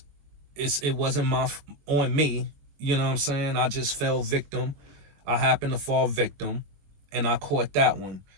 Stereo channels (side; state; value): left; late; 21 ms